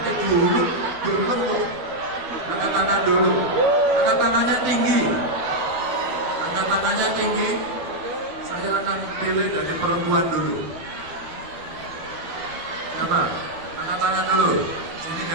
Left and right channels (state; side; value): late; left; 12 ms